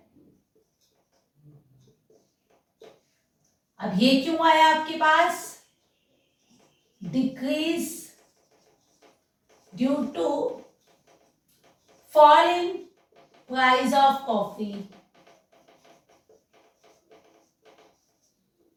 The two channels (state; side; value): identical; both; correlation 1.00